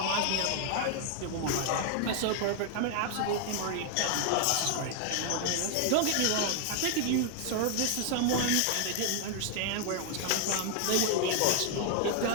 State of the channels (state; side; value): different; both; correlation 0.00